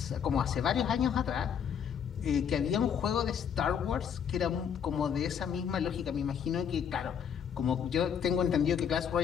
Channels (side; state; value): right; quieter; 7.9 dB